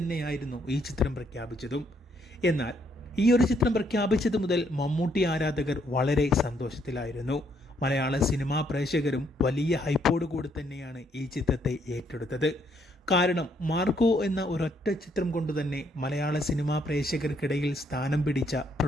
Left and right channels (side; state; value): both; normal; correlation 0.71